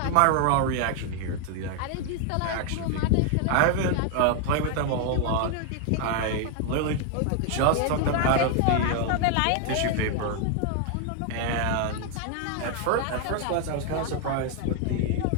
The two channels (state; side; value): different; both; correlation 0.00